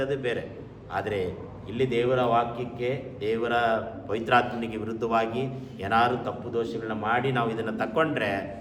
ಅದು ಬೇರೆ. ಆದರೆ ಇಲ್ಲಿ ದೇವರ ವಾಕ್ಯಕ್ಕೆ, ದೇವರ ಪವಿತ್ರಾತ್ಮನಿಗೆ ವಿರುದ್ಧವಾಗಿ ಏನಾದರೂ ತಪ್ಪು ದೋಷಗಳನ್ನ ಮಾಡಿ ನಾವು ಇದನ್ನು ತಕ್ಕೊಂಡ್ರೆ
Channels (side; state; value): both; identical; correlation 1.00